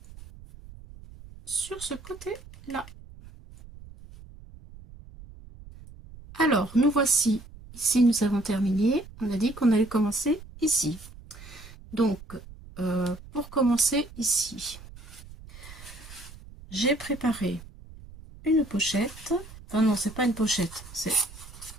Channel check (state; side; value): noise; right; rumble, 18 dB below the sound